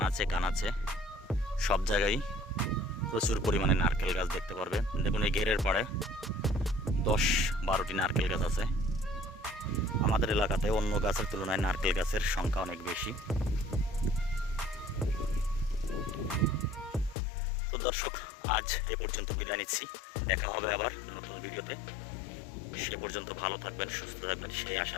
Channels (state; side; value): drops out; right; at 17.2 s